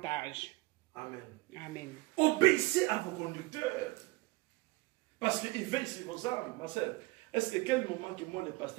Amen. Amen. Obéissez à vos conducteurs. Parce qu'ils veillent sur vos âmes, ma soeur. Est-ce que quel moment que moi, le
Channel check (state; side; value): quieter; left; 23.0 dB